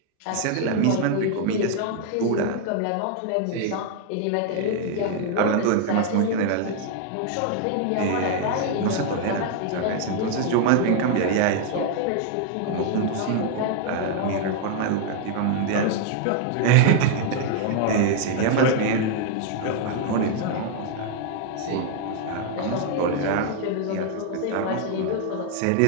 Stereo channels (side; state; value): both; different; correlation 0.00